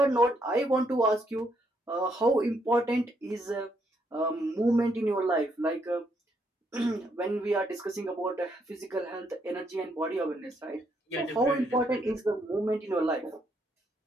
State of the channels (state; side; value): normal; both; correlation 0.74